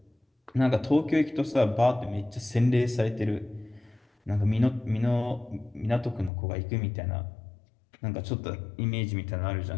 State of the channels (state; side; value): drops out; right; at 6.3 s